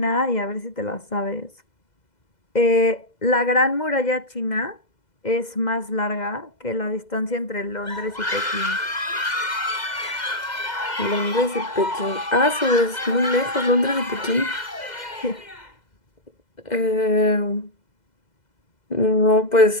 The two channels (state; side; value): late; right; 2.0 ms